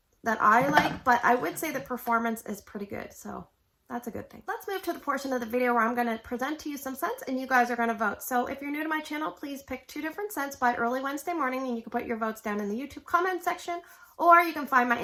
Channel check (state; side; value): identical; both; correlation 1.00